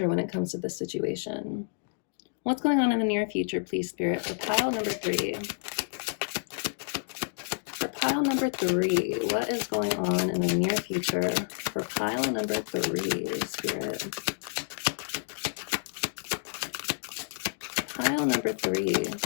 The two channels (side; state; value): right; silent; digital silence